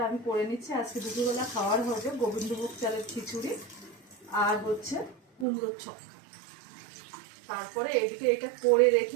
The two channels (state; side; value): drops out; left; at 5.5 s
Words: আমি করে নিচ্ছি। আজকে দুপুরবেলা খাওয়ার হবে গোবিন্দভোগ চালের খিচুড়ি আর হচ্ছে কুমড়োর ছক্কা। তারপরে এদিকে এটা করে